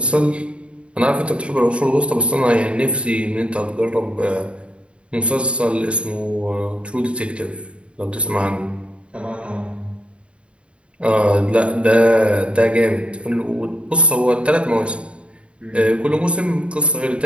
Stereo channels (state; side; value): late; left; 0.058 ms